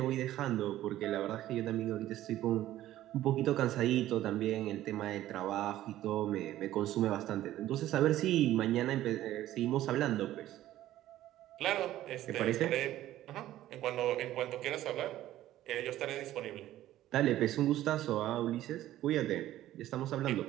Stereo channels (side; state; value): left; quieter; 13.9 dB